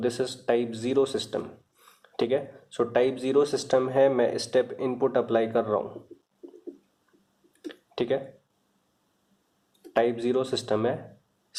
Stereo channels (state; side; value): identical; both; correlation 1.00